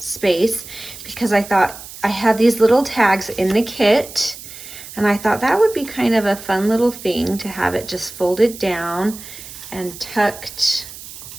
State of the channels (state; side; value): noise; right; hiss, 14 dB below the sound